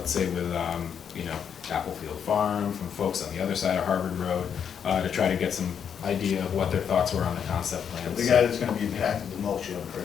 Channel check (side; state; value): right; quieter; 7.8 dB